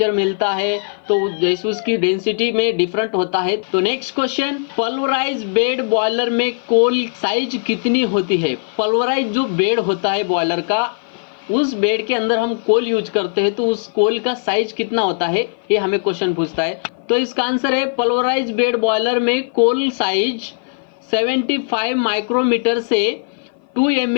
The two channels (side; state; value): right; silent; 56 dB below the other